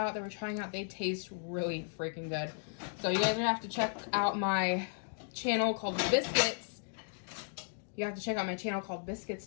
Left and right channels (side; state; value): right; silent; digital silence